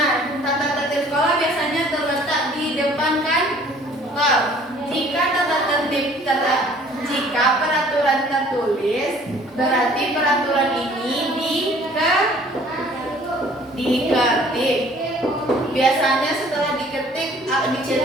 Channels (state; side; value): normal; both; correlation 0.54